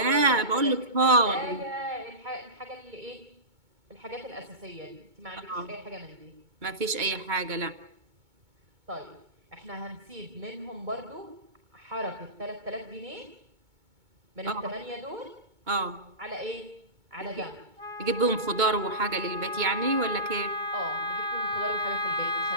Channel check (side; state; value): left; late; 2.2 ms